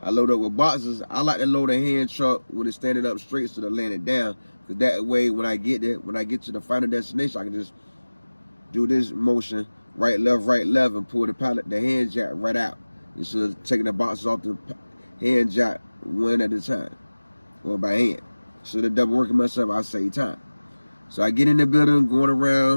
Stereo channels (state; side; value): inverted; both; correlation -1.00